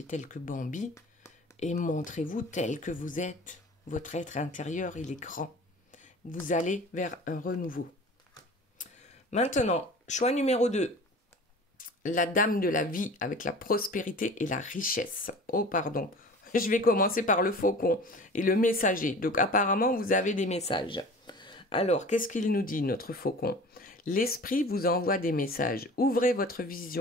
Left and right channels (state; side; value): normal; both; correlation 0.41